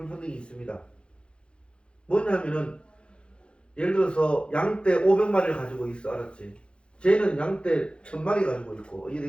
있습니다. 뭐냐면은 예를 들어서 양떼 500마리를 가지고 있어. 알았지? 쟤는 양떼 1000마리 가지고 있고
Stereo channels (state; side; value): late; right; 0.056 ms